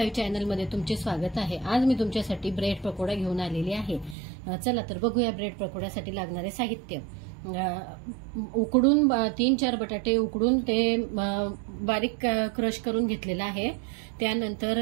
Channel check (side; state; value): left; drops out; at 4.2 s